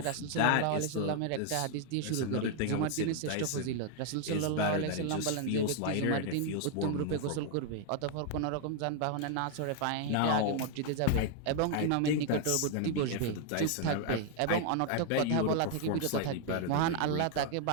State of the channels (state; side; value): different; both; correlation 0.00